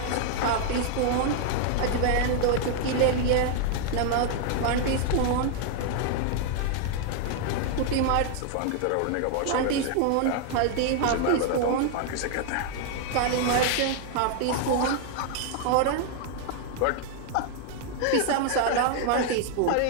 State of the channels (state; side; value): different; both; correlation 0.00